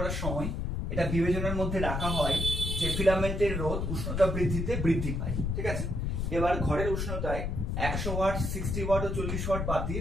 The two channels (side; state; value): left; noise; rumble, 1 dB below the sound